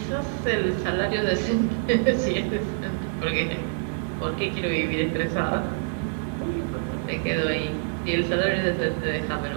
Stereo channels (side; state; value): left; silent; digital silence